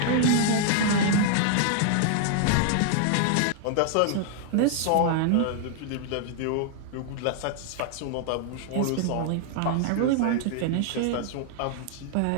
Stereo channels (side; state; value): both; different; correlation 0.00